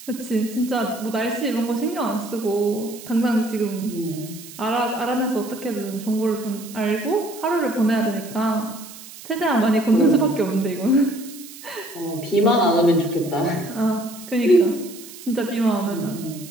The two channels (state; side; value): noise; right; hiss, 16 dB below the sound